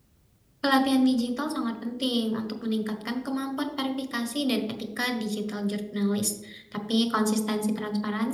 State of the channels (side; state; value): both; identical; correlation 1.00